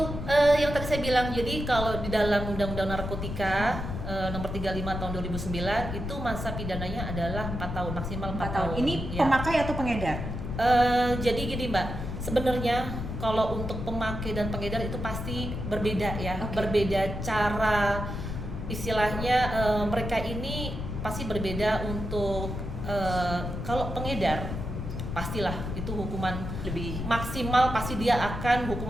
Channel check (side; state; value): left; noise; rumble, 5 dB below the sound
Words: yang tadi saya bilang, jadi kalau di dalam Undang-Undang Narkotika Nomor 35 Tahun 2009 itu masa pidananya adalah 4 tahun, maksimal 4 tahun. Ini Ya. pemakai atau pengedar? Jadi gini Mbak, sebenarnya kalau untuk pemakai dan pengedar itu pasti berbeda ya, Oke. berbeda cara, istilahnya mereka ini pasti berbeda. Untuk kalau pengedar pastilah itu hukuman Lebih maksimal, pasti dia akan